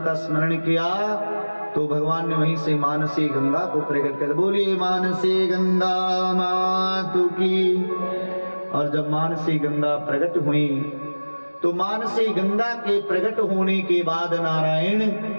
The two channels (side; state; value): both; inverted; correlation -1.00